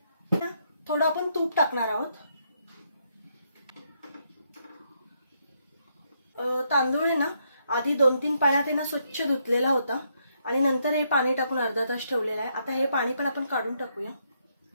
ना। थोडं आपण तूप टाकणार आहोत। तांदूळ आहे ना आधी 2-3 पाण्यात ना स्वच्छ धुतलेला होता आणि नंतर हे पाणी टाकून अर्धा तास ठेवलेला आहे। आता हे पाणी पण आपण काढून टाकूया।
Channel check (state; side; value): inverted; both; correlation -0.76